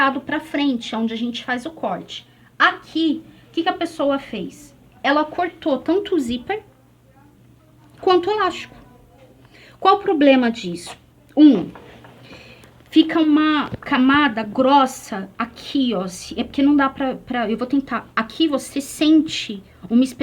para frente, onde a gente faz o corte. Aqui, o que que a pessoa fez? Ela cortou tanto o zíper quanto o elástico. Qual o problema disso? Fica uma camada grossa aqui, ó. É porque não dá pra... Eu vou tentar. Aqui você sente uma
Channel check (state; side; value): identical; both; correlation 1.00